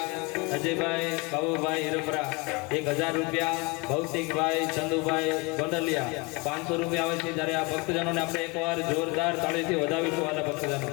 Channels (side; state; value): right; quieter; 27.9 dB